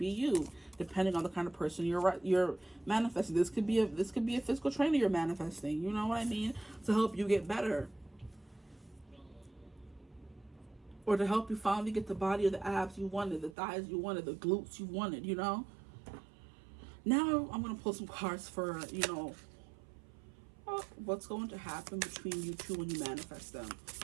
you, depending on the kind of person you're manifesting. This could be a physical trainer you're manifesting. You know what I mean? To help you get better, or to help you finally get the body or the abs you wanted, the thighs you wanted, the glutes you wanted. Now I'm going to pull some cards for what's going to happen between you two when you manifest them.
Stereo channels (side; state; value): left; drops out; at 13.6 s